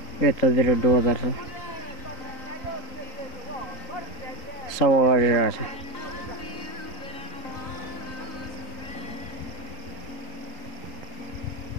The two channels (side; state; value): right; late; 3.9 ms